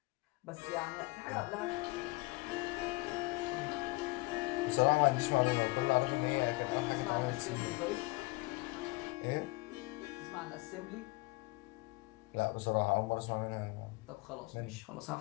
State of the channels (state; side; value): quieter; right; 23.1 dB